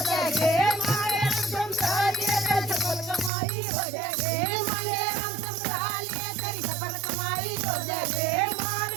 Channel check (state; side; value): drops out; left; at 3.3 s